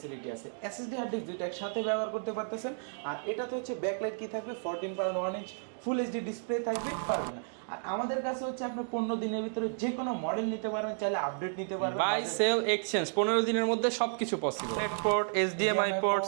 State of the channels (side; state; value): left; silent; digital silence